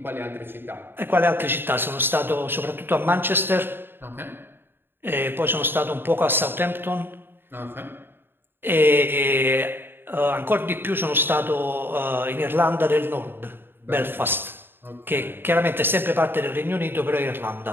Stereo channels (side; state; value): left; late; 0.10 ms